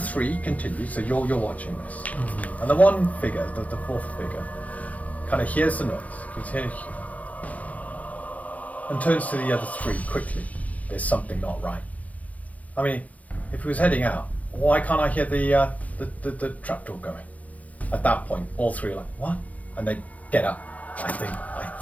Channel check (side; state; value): right; late; 0.071 ms